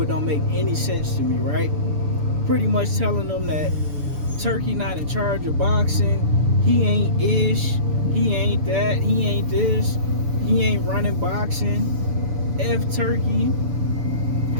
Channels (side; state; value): left; late; 6.9 ms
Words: It don't make any sense to me, right? Pretty much telling them that Turki not in charge of boxing. He ain't ish. He ain't that. He ain't this. He ain't running boxing. F Turki.